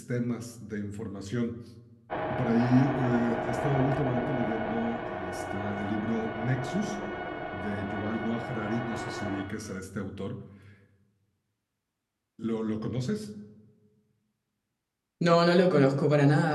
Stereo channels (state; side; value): identical; both; correlation 1.00